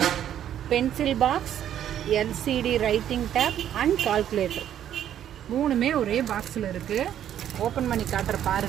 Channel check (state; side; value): quieter; left; 10.5 dB